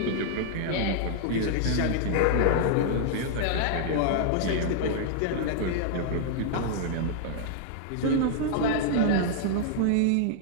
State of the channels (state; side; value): different; both; correlation -0.01